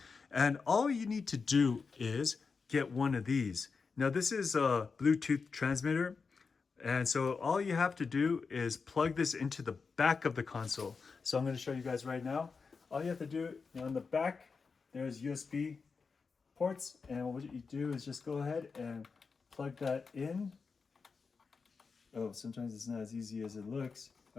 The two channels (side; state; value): right; quieter; 5.0 dB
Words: And all you need to do is get one of these. Now this is a Bluetooth transmitter. And so all you have to do is plug this into the back of the console. So I'm going to show you guys right now. All you have to do, on the back, there's USB ports. And what you do is just go ahead and plug that in. Oh, sometimes it's not as easy as it looks.